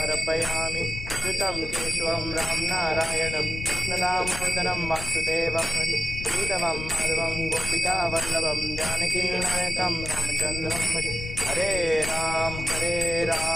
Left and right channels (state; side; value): noise; left; rumble, 9 dB below the sound